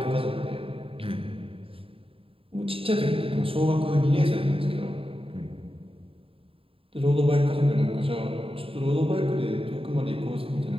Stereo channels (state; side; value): late; left; 0.27 ms